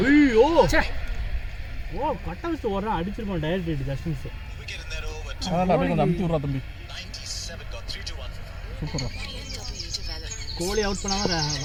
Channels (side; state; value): both; identical; correlation 1.00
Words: ஓ கட்ட வச்சு ஓடுறா அடிச்சிருப்பான். Direct hit Justin's. அதான் அப்படியே கொஞ்சம் அமுத்தி விட்றா தம்பி. சூப்பரா கோலி அவுட் பண்ணாமல்